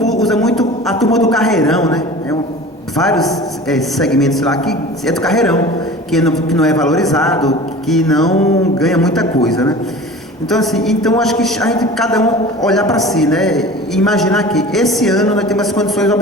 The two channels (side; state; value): both; normal; correlation 0.39